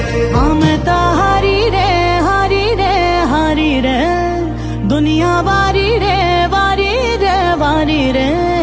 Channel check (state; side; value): identical; both; correlation 1.00